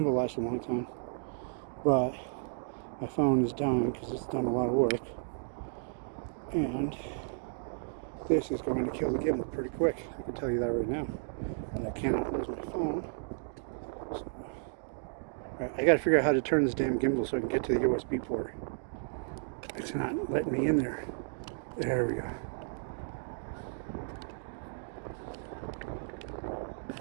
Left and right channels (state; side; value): silent; left; digital silence